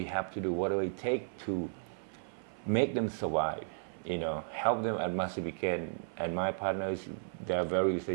have to do whatever it takes to make them survive. You know, help them as much as we can. And my partners, they are very say,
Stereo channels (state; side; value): silent; left; 55 dB below the other